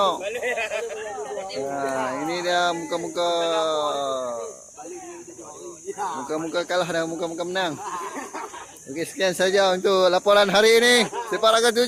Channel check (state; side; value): identical; both; correlation 1.00